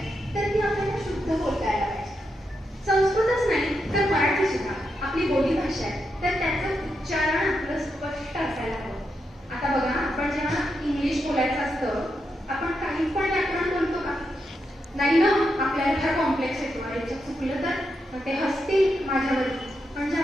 तर ती आपल्याला शुद्ध बोलता यायला पाहिजे. संस्कृतच नाही तर मराठी सुद्धा आपली बोली भाषा आहे, तर त्याचं उच्चारण आपलं स्पष्ट असायला हवं. आता बघा, आपण जेव्हा इंग्लिश बोलायचं असतं, आपण काही पण व्याकरण बोलतो का? नाही ना, आपल्याला फार कॉम्प्लेक्स येतो. याच्यात चुकलं तर ते हसतील माझ्यावरती. म्हणजे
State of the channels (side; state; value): both; normal; correlation 0.84